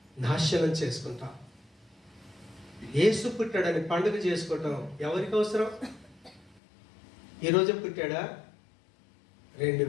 నాశనం చేసుకుంటావు. యేసు పుట్టాడని పండుగ చేసుకోవటం ఎవరికి అవసరం? ఈరోజు పుట్టాడా?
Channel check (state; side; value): drops out; right; at 6.6 s